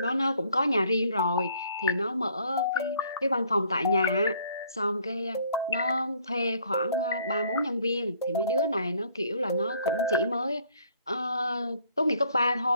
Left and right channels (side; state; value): both; inverted; correlation -0.61